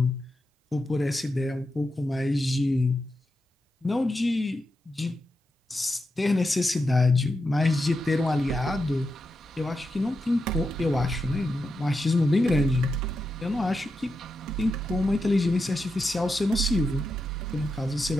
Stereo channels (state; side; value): normal; both; correlation 0.87